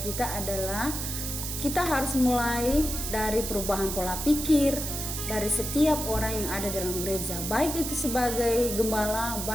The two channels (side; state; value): right; noise; hiss, 4 dB below the sound